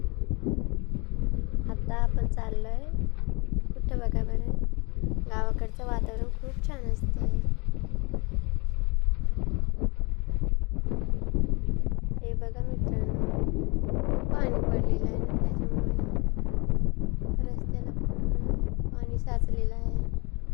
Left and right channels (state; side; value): quieter; right; 28.6 dB